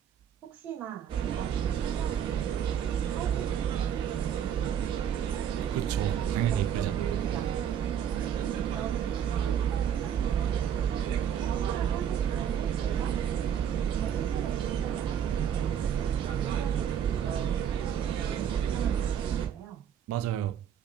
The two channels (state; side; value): quieter; left; 9.0 dB